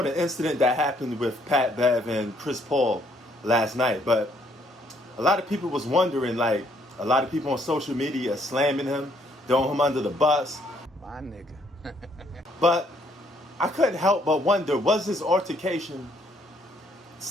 the incident that happened with Pat Bev and Chris Paul last night. But a lot of people was wondering, like, a lot of people on social media slamming him, throwing him under the bus. My nigga. But I couldn't help but wonder, was this altercation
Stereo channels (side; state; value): both; normal; correlation 0.68